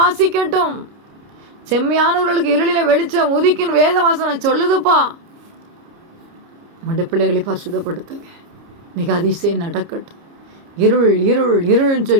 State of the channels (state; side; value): late; left; 29 ms